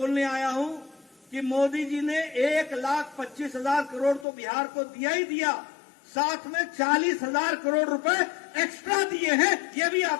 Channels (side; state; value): right; drops out; at 4.2 s